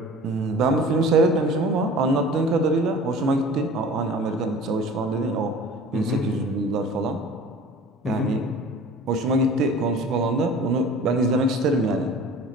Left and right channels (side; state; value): both; normal; correlation 0.43